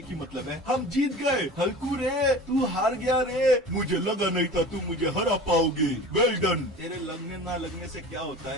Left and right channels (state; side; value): normal; both; correlation 0.38